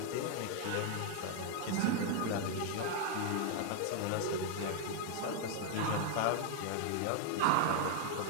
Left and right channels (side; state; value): both; different; correlation 0.00